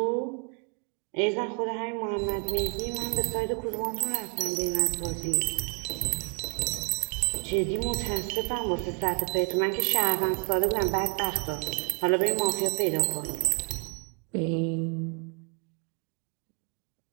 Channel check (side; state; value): left; quieter; 32.4 dB